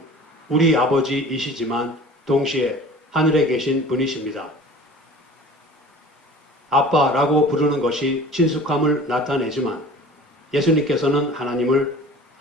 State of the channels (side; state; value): both; normal; correlation 0.43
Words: 우리 아버지이시지만 동시에 하늘에 계신 분이십니다. 아빠라고 부르는 것이 친숙함을 나타내지만 예수님께서는 하나님을